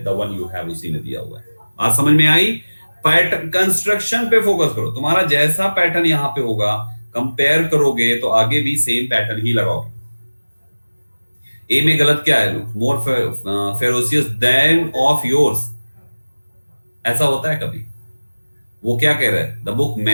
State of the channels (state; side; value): inverted; both; correlation -1.00